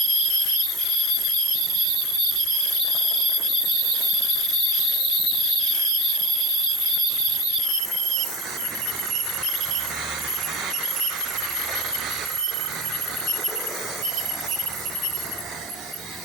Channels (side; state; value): both; normal; correlation 0.32